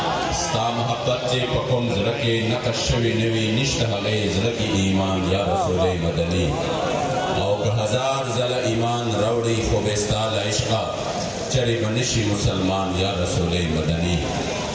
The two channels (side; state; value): both; identical; correlation 1.00